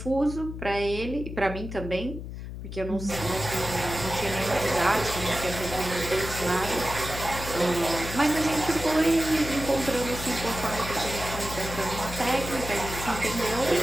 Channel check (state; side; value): noise; left; hum, 9 dB below the sound